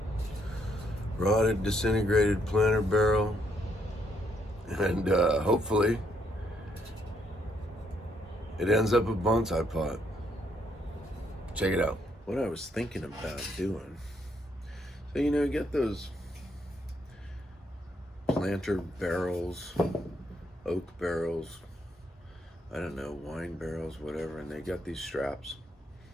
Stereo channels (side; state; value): both; normal; correlation 0.73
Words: Rotted, disintegrated planter barrel. And hopefully it ends up a bonsai pot. Check it out. What I was thinking about doing. So you get those planter barrels, oak barrels, I don't know, wine barrels, whatever, and they got these straps.